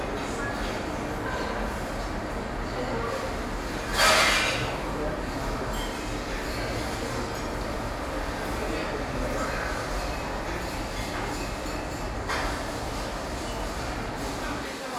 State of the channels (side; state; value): both; identical; correlation 1.00